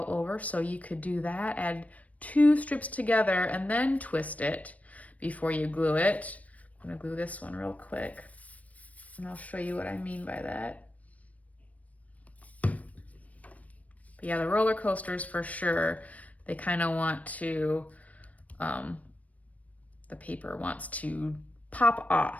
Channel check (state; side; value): late; right; 0.068 ms